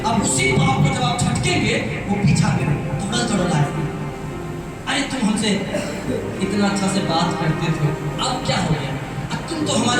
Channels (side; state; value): both; identical; correlation 1.00